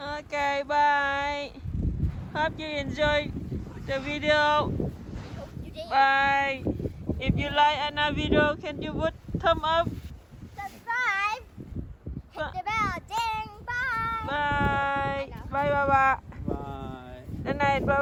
Okay, bye. Hope you enjoyed the video. You did. Bye. If you like another video, can you put thumb up? Subscribe. Hit the bell. Ding. Bye. Bye. Bye, Baba. Bye. Good night,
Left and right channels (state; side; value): identical; both; correlation 1.00